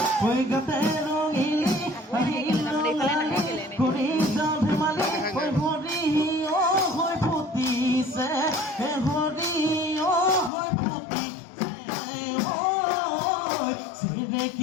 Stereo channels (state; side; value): drops out; right; at 10.5 s